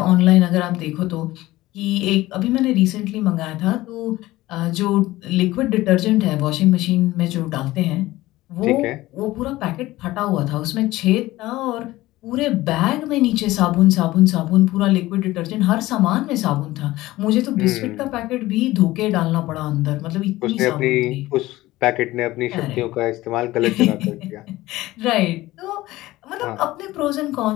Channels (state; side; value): quieter; right; 17.6 dB